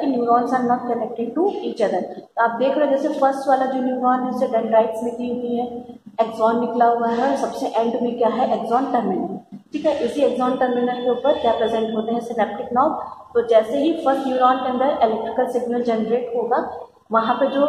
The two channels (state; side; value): identical; both; correlation 1.00